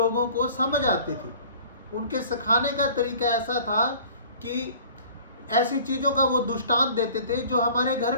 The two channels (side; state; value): both; inverted; correlation -0.48